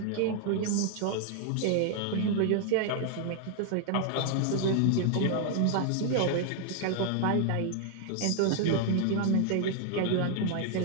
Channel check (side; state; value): both; different; correlation 0.00